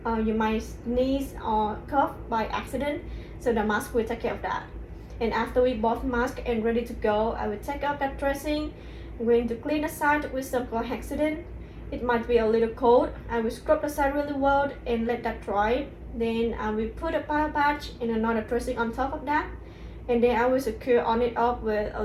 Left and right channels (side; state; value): both; identical; correlation 1.00